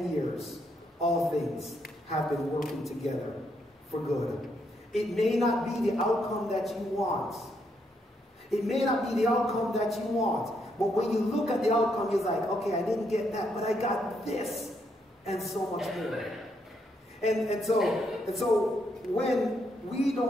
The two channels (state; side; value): normal; both; correlation 0.76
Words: years, all things have been working together for good. It may not be the outcome that you want. It may not be the outcome that you want. But when you look at the outcome, you're like, okay, I didn't get that, but I got this. And so much more. And so when we